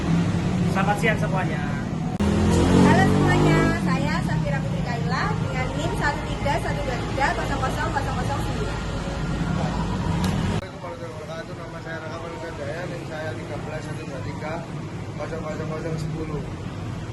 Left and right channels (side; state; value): both; identical; correlation 1.00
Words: Selamat siang semuanya. Halo semuanya, saya Safira Putri Kaila dengan NIM 131230009. Nama saya Raka Manuka Daya, NIM saya 131230010.